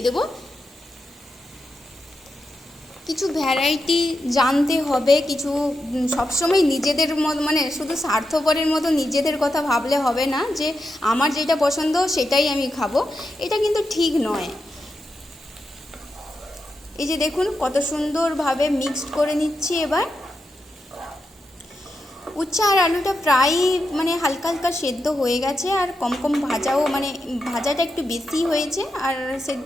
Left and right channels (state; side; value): normal; both; correlation 0.87